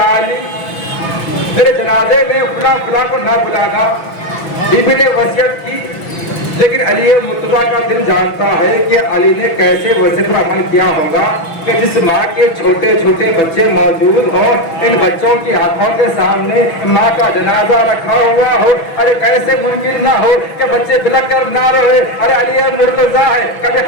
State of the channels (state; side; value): late; right; 6.0 ms